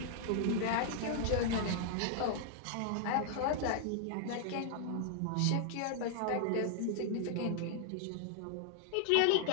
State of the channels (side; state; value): both; different; correlation 0.00